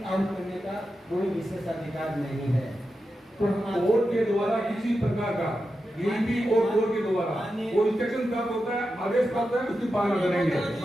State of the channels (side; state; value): both; normal; correlation 0.90